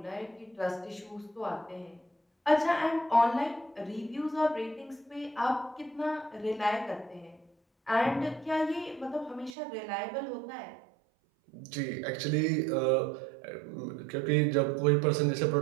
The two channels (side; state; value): left; drops out; at 9.6 s